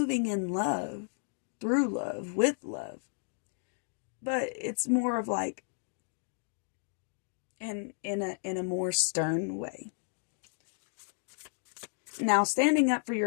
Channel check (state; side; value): silent; right; digital silence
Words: in love, through love, with love. But it's more of like in a more stern way. Now, standing up for